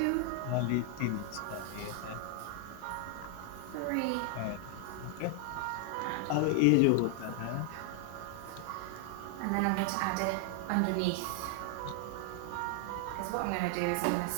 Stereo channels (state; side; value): different; both; correlation 0.00